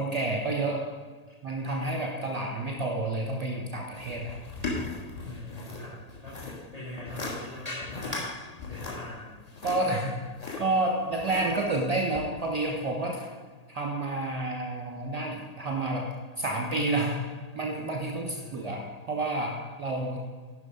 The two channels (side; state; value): left; late; 1.8 ms